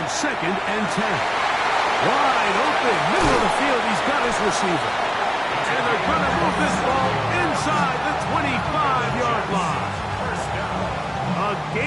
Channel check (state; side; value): identical; both; correlation 1.00